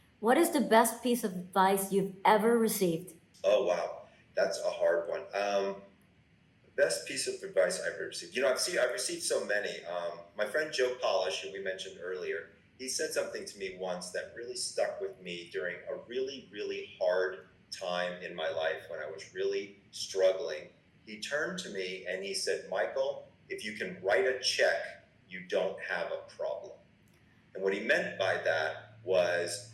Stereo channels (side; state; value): both; identical; correlation 1.00